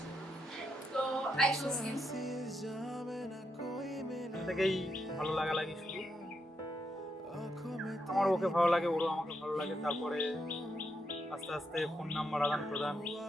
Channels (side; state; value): both; normal; correlation 0.81